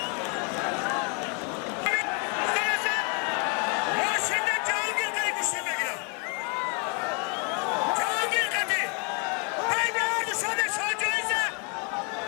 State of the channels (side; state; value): right; quieter; 36.0 dB